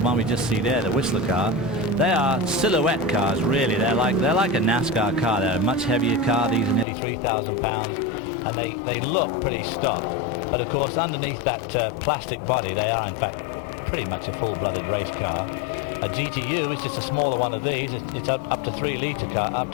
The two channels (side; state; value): right; drops out; at 6.9 s